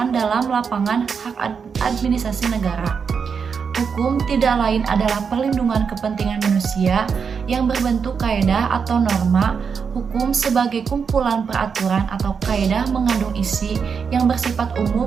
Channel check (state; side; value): quieter; left; 6.1 dB